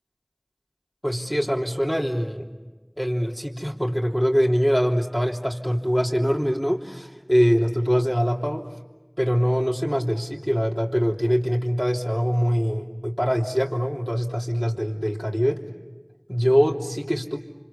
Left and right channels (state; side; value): identical; both; correlation 1.00